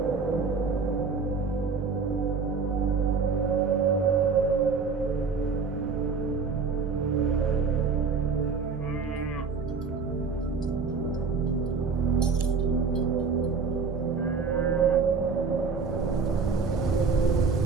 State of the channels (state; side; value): quieter; left; 5.0 dB